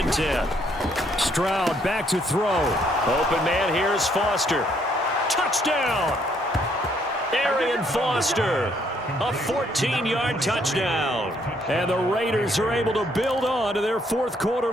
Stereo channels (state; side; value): normal; both; correlation 0.69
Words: 10. Stroud back to throw. Open man, here's Foster. Touchdown! Arian Foster. A 14-yard touchdown. And the Raiders are able to build on to their fourth-quarter